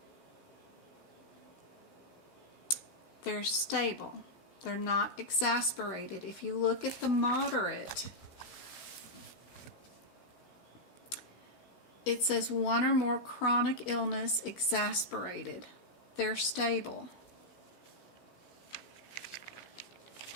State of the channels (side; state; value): right; late; 15 ms